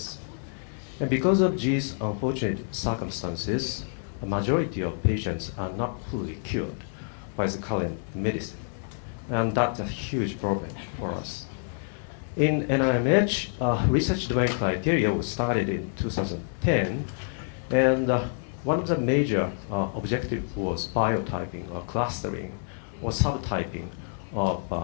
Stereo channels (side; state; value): right; silent; 60 dB below the other